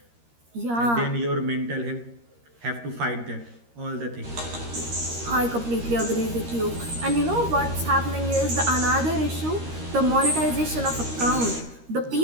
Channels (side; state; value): left; late; 13 ms